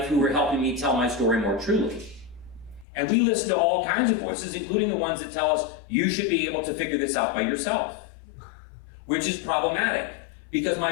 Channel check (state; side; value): drops out; right; at 2.9 s